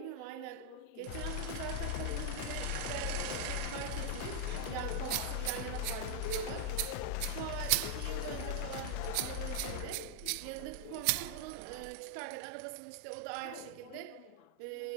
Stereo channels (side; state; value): both; different; correlation 0.00